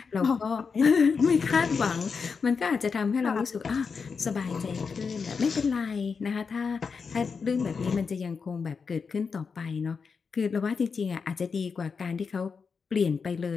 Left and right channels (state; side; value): quieter; right; 5.4 dB